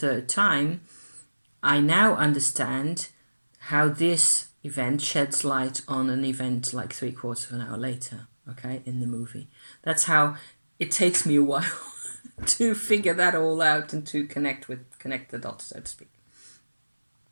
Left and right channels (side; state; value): both; inverted; correlation -1.00